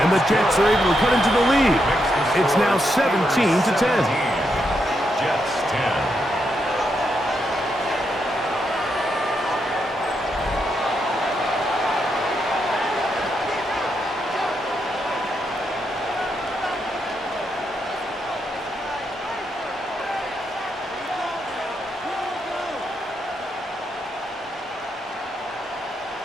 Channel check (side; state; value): both; normal; correlation 0.81